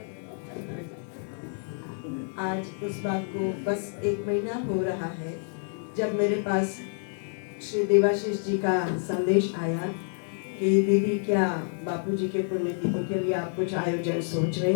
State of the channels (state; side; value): silent; right; digital silence